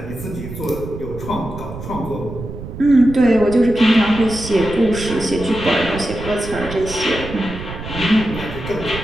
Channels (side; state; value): right; noise; rumble, 10 dB below the sound